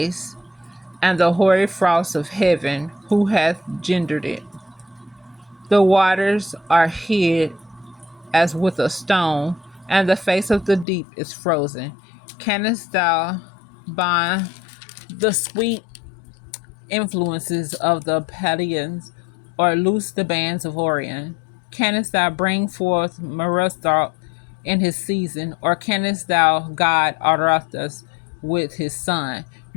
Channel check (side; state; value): right; drops out; at 10.9 s